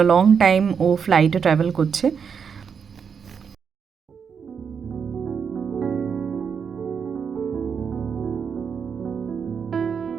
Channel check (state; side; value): quieter; left; 6.6 dB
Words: a long time ও ফ্লাইটে ট্রাভেল করছে।